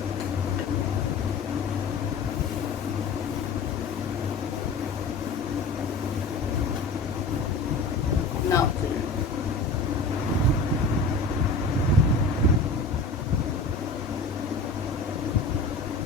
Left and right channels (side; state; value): right; quieter; 3.7 dB